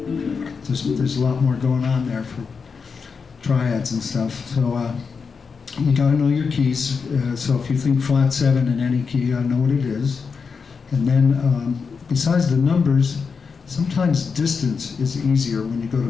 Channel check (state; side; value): quieter; right; 5.4 dB